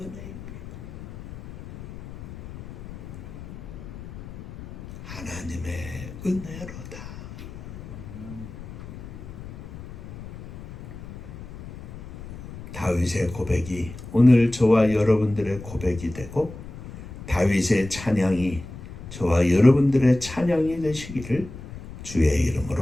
하나님의 은혜로다. 다윗의 고백이 오늘 저와 여러분들의 고백이 되고, 다윗의 찬양이 저와 여러분들의 찬양이 되시기를 주의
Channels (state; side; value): noise; left; rumble, 13 dB below the sound